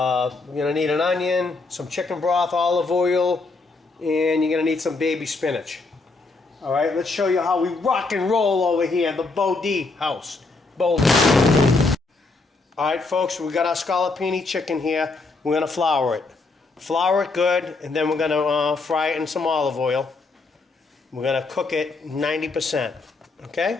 going to need an onion, some chicken broth, olive oil, and you're going to need some baby spinach. All right, let's show you how we rock and roll over here in the Bodhi house. Boulder. All right, folks, we got our scallopini chicken here. We're going to flour it. Flour it good, and then we're going to fry it in some olive oil. We're going to cook it 90%,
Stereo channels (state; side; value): quieter; right; 3.7 dB